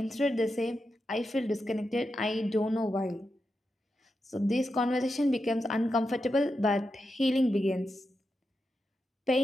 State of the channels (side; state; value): both; normal; correlation 0.88